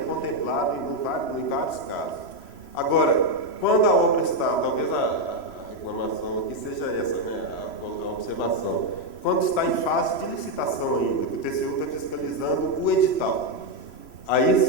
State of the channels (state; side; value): late; right; 3.0 ms